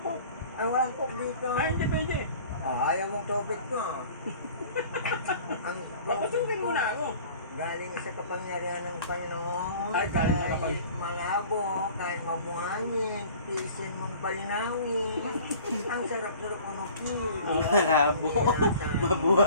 Ang walang coke dito. Hindi pwede. Ayaw mong tubig ko. Ang Papasukin mo na ako. galing sa kapangyarihan ng Panginoon. Ay, galing sa kahit malabo, kahit mabuhangin, tiisin mong palinawin. Ang sarap-sarap umukil. Malabo.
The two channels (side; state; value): both; inverted; correlation -0.47